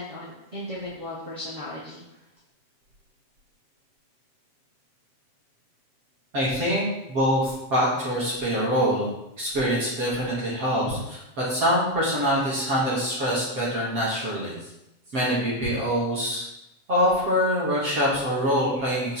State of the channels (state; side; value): late; left; 7.6 ms